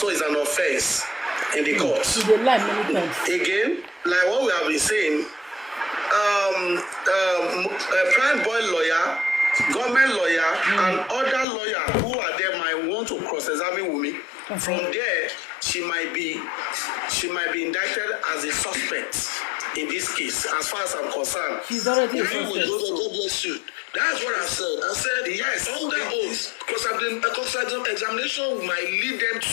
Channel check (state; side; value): drops out; right; at 11.5 s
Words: is an offense in the court. Again, like what we have been saying, Prime Boy lawyer, government lawyer, and other lawyer who are there might want to cross-examine Wunmi. From there, she might be indicted as a suspect in this case. As far as I'm concerned, God bless you. That's what I said. I said yes. Under oath, cross-examination might lead them